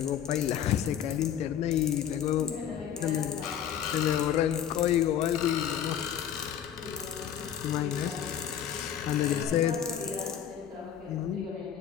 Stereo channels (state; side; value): quieter; right; 9.5 dB